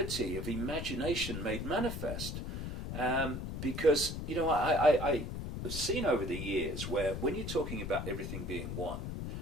of imagination made manifest. Because I've seen over the years where when you're talking about everything being one,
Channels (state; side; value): noise; left; rumble, 5 dB below the sound